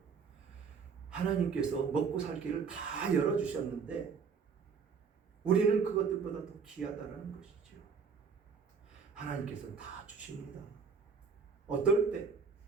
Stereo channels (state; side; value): quieter; left; 5.7 dB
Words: 하나님께서 먹고 살 길을 다 열어주셨는데 우리는 그것들보다 더 귀하다는 것이죠. 하나님께서는 다 주십니다. 어떨 때?